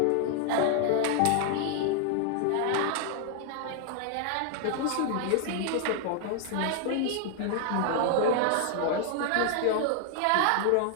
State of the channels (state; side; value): different; both; correlation 0.00